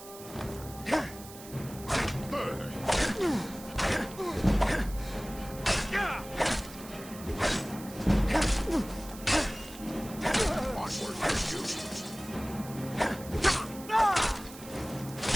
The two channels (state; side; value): noise; right; hiss, 16 dB below the sound